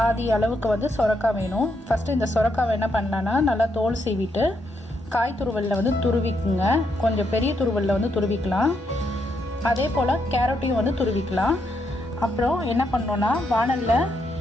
அளவுக்கு வந்து சொரக்காய் வேணும். ஃபஸ்ட்டு இந்த சொரக்காவை என்ன பண்ணலான்னா நல்லா தோல் சீவிட்டு காய் துருவலில் வந்து துருவிக்குங்க. கொஞ்சம் பெரிய துருவலில் வந்து துருவிக்கலாம். அதே போல் கேரட்டையும் வந்து துருவிக்கலாம். அப்புறம் என்ன பண்ணோன்னா வானலில்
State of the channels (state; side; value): normal; both; correlation 0.78